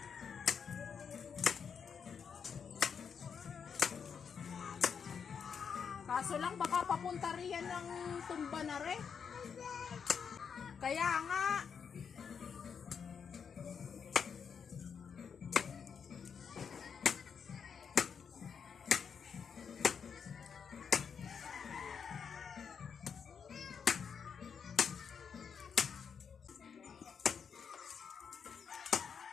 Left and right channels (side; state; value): right; quieter; 6.7 dB